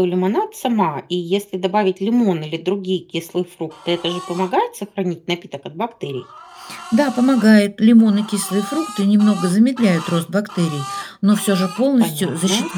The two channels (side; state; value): both; identical; correlation 1.00